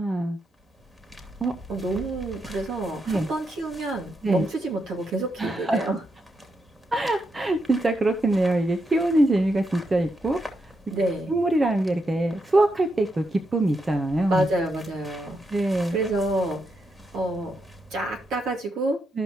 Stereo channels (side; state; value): both; normal; correlation 0.83